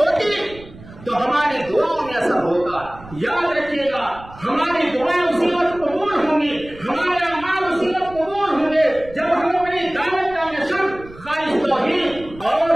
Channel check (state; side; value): noise; right; rumble, 19 dB below the sound